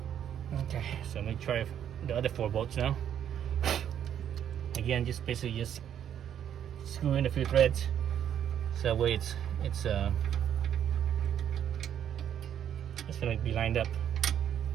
Okay, so let me try the other 4 bolts now. Again, just basically just screw in a few threads, so that way it's gonna be lined up.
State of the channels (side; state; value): left; quieter; 9.5 dB